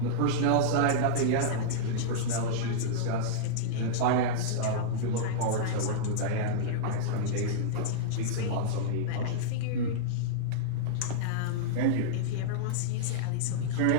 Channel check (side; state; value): both; different; correlation -0.03